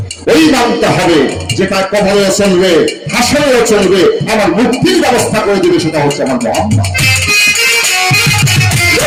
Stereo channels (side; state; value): both; identical; correlation 1.00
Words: ওই নামটা হবে যেটা কবরে চলবে, হাসরেও চলবে, আমার মুক্তির ব্যবস্থা করে দিবে, সেটা হচ্ছে আমার মোহাম্মদ।